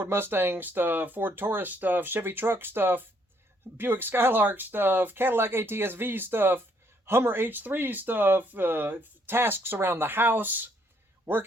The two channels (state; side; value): normal; both; correlation 0.69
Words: Mustang stuff, Ford Taurus stuff, Chevy truck stuff, Buick Skylark stuff, Cadillac ATS-V stuff, Hummer H3 stuff, tasks around the house,